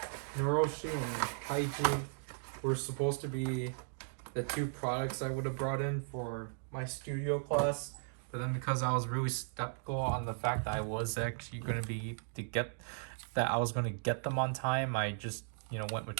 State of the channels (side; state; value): left; silent; digital silence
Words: Naroshi and Kaiji were supposed to be the 2 products I would have brought in for my studio class, but then because I was really skeptical on the fact that I was actually going to be get them on time, I just, you know, went with